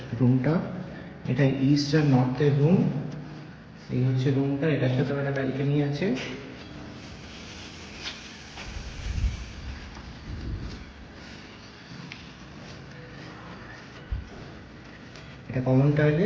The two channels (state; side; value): identical; both; correlation 1.00